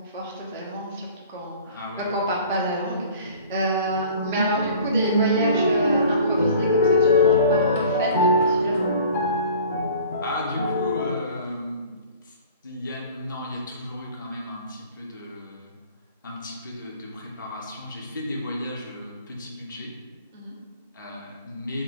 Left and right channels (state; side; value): inverted; both; correlation -0.46